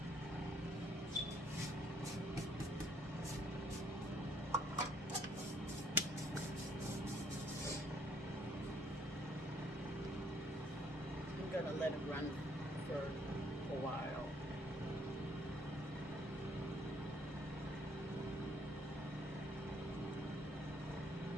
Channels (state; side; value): normal; both; correlation 0.65